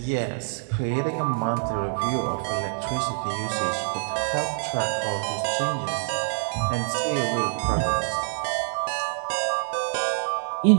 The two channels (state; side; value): silent; left; 55 dB below the other